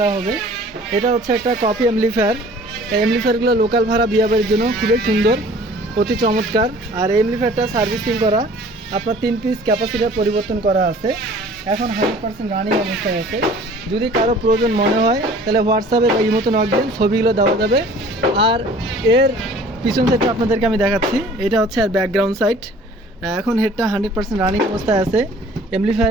হবে। এটা হচ্ছে একটা কপি অ্যাম্পলিফায়ার। এই অ্যাম্পলিফায়ারগুলো লোকাল ভাড়া বিয়াবাড়ির জন্য খুবই সুন্দর, অতি চমৎকার। আর এই অ্যাম্পলিফায়ারটা সার্ভিসিং করা, আপনার 3 পিস ক্যাপাসিটার পরিবর্তন করা আছে। এখন 100% রানিং অবস্থায় আছে। যদি কারো প্রয়োজন মনে হয় তাহলে হোয়াটসঅ্যাপে বা ইমোতে নক দেন, ছবিগুলো দেওয়া যাবে। আর এর পিছন সাইডটা আপনাদেরকে আমি দেখাচ্ছি। এটা হচ্ছে আর ব্যাকগ্রাউন্ড সাইড। এখন হেডটা 100% রানিং অবস্থায় আছে।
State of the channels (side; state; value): both; normal; correlation 0.50